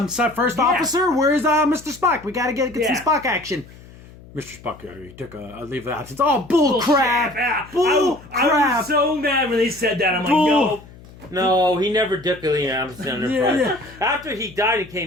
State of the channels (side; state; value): left; noise; hum, 21 dB below the sound